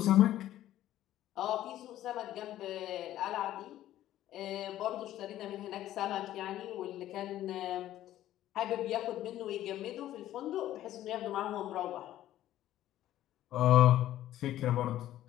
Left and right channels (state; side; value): quieter; right; 13.3 dB